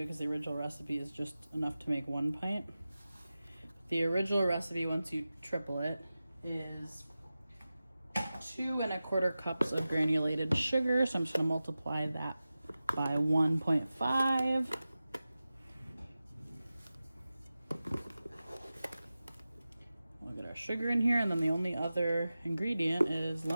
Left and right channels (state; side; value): inverted; both; correlation -0.95